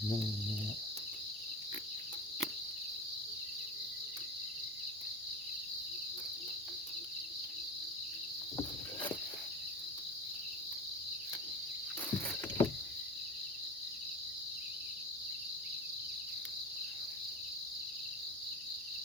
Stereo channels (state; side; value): normal; both; correlation 0.28